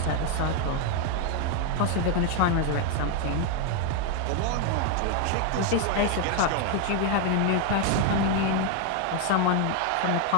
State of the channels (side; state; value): both; different; correlation 0.01